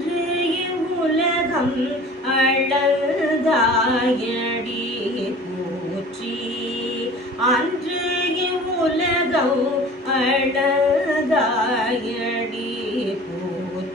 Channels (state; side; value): normal; both; correlation 0.43